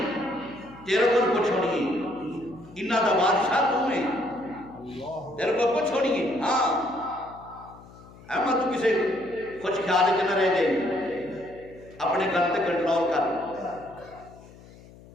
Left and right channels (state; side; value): noise; left; hum, 21 dB below the sound